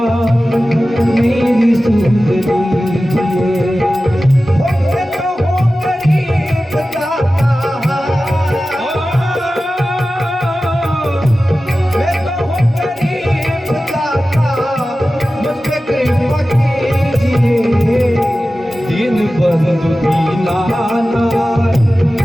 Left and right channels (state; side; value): normal; both; correlation 0.95